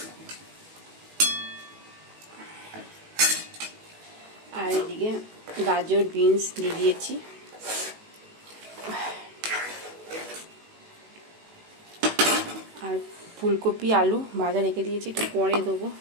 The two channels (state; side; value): late; left; 18 ms